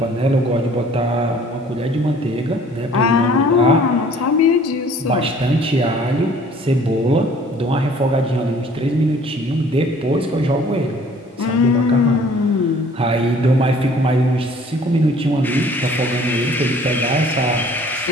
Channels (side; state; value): both; normal; correlation 0.53